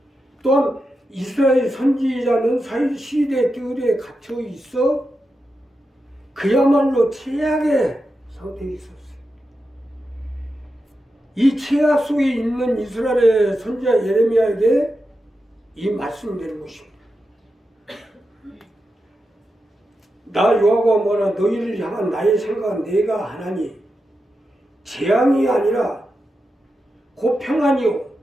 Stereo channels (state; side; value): normal; both; correlation 0.89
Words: 또한 이스라엘 선지자는 시대 뜰에 갇혀 있어 그야말로 최악의 상태에 있었어요. 이 최악 속에 있는 이스라엘의 선지자 예레미야에게 이 말씀이 되는 것입니다. 나 여호와가 뭐라 너희를 향한 나의 생각은 내가 하나니 재앙이 아니라 곧 평안이요